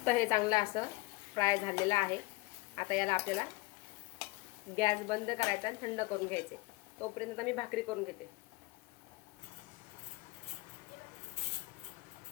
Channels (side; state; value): right; quieter; 22.7 dB